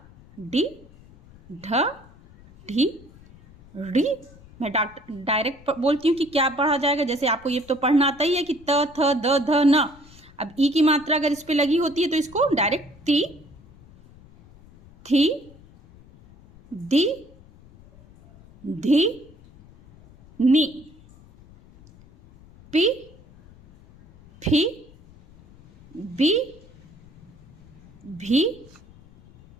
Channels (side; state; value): left; noise; rumble, 24 dB below the sound